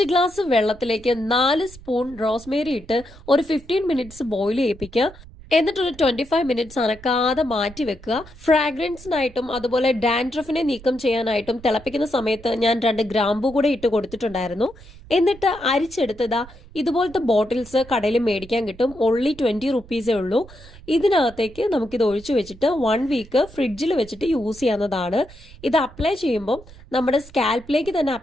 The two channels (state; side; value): noise; right; rumble, 20 dB below the sound